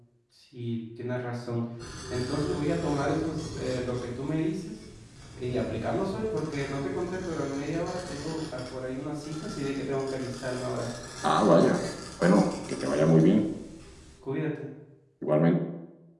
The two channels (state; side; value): identical; both; correlation 1.00